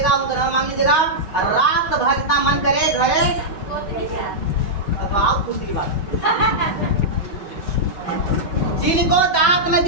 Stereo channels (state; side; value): late; right; 5.3 ms